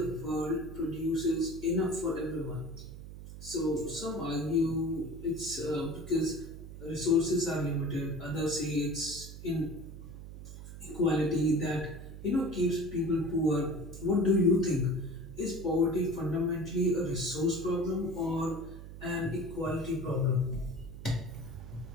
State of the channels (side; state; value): right; noise; hum, 12 dB below the sound